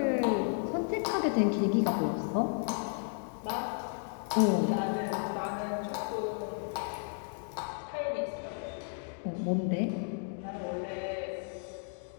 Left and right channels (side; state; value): right; silent; 56 dB below the other